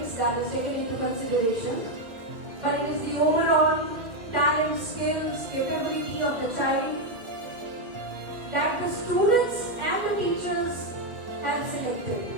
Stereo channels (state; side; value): late; left; 1.9 ms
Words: that is taken into consideration, but it is the overall talent, skills, capability of the child that the students and the teachers have selected.